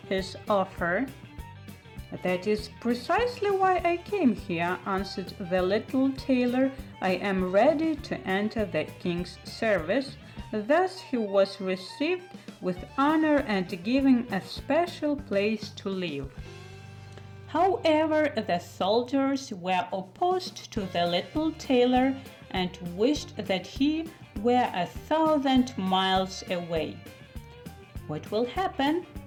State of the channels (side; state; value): both; identical; correlation 1.00